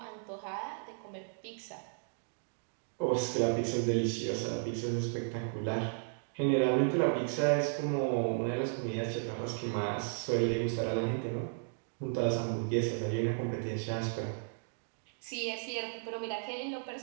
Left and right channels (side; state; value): left; silent; digital silence